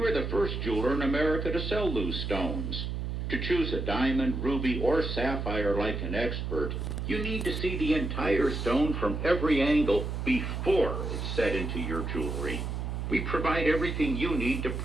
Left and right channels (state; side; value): noise; right; hum, 3 dB below the sound